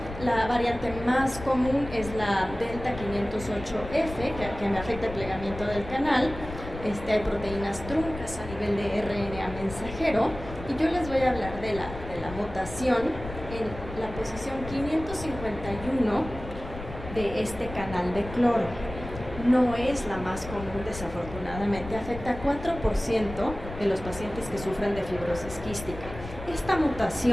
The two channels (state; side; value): noise; left; rumble, 11 dB below the sound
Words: La variante más común es la delta 508F, que me afecta el plegamiento del canal. Hay proteínas truncas a nivel de RNA mensajero. Y yo les voy a hablar de la mutación en la posición 551 de este canal de cloro. No es la más común, desafortunadamente. Afecta a 4% de los pacientes que sufren de fibrosis quística. Esta